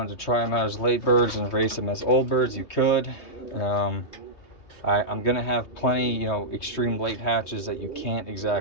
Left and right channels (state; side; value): late; right; 3.2 ms